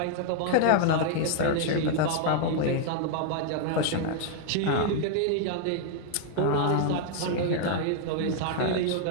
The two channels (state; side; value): different; both; correlation 0.00